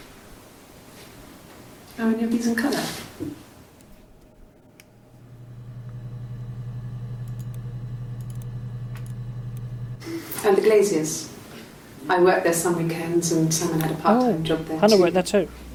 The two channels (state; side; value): identical; both; correlation 1.00